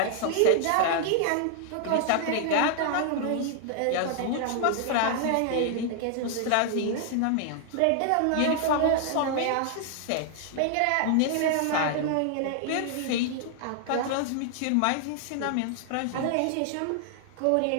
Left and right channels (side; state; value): both; different; correlation 0.00